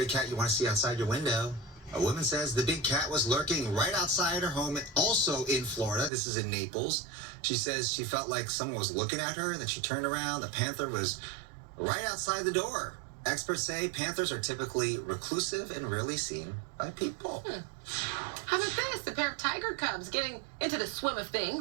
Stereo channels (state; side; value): drops out; left; at 6.1 s